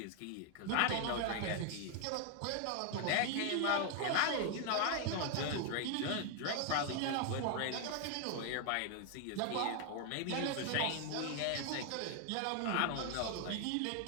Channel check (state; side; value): different; both; correlation 0.00